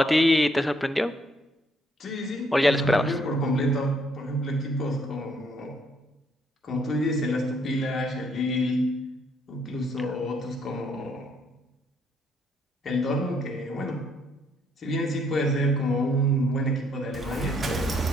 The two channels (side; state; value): both; normal; correlation 0.69